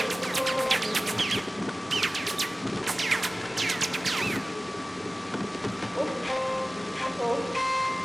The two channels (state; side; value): normal; both; correlation 0.97